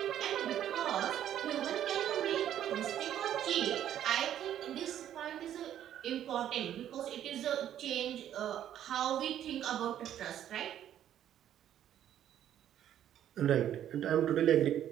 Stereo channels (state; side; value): quieter; left; 10.9 dB